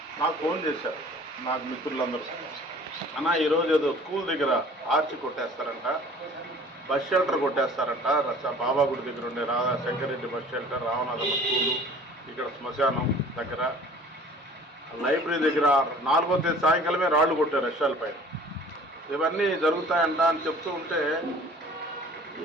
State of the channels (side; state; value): both; normal; correlation 0.48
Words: నాకు ఫోన్ చేశారు నాకు మిత్రులందరూ, అన్న ఈరోజు ఏదో స్కూల్ దగ్గర ఆర్చి కొట్టేస్తారంట, బస్ షెల్టర్ కొట్టేస్తారంట, బాబాగుడి దగ్గర ఉండే శంకరెడ్డి బస్ షెల్టర్, రామనాథమ్మ స్కూలు, ఇక్కడ శ్మశానం దగ్గర, లైబ్రరీ దగ్గర 4వ తేదీ సాయంకాలమే రాళ్లు కొట్టారు రష్యాల పైన. ఇవన్నీ జరుగుతాయంట అని చెప్తూ ఉంటే